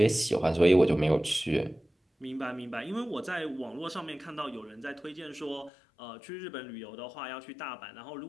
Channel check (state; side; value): drops out; right; at 5.7 s